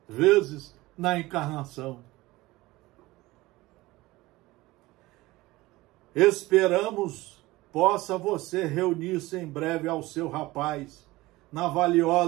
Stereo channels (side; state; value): left; quieter; 19.5 dB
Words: vezes na encarnação. Esperamos possa você reunir-se em breve ao seu rapaz na